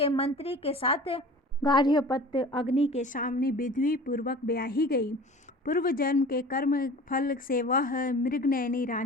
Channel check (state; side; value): normal; both; correlation 0.41